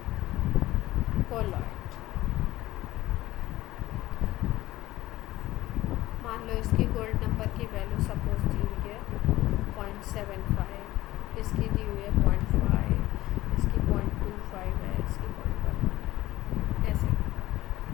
colloid. मान लो इसकी गोल्ड नंबर की वैल्यू सपोज दी हुई है 0.75, इसकी दी हुई है 0.5, इसकी 0.25 है, इसकी 0.1 ऐसे।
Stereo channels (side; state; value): right; quieter; 16.8 dB